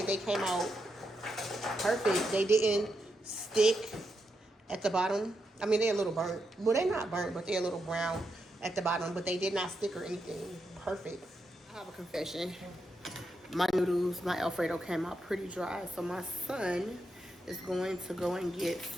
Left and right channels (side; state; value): both; normal; correlation 0.84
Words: they came out perfect. They didn't stick at the bottom. I mean, they're a little burnt. Well, they're not burnt, but they're a little brown at the bottom. But they did not stick or anything. Perfect. I have a confession. My noodles, my Alfredo came out pretty dry. So my son is going to go and get